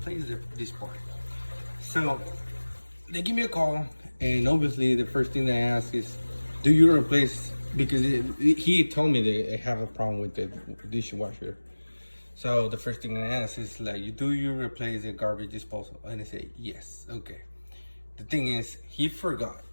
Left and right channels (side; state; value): both; inverted; correlation -1.00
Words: this part. So they give me a call, and obviously the first thing they ask is, do you replace, because he told me they have a problem with the dishwasher. So the first thing I ask is like, do you replace the garbage disposal? And they say yes. Okay. The thing is, he forgot